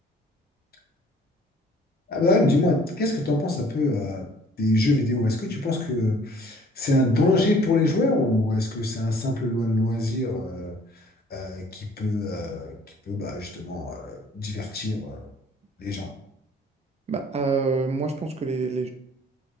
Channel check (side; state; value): both; normal; correlation 0.56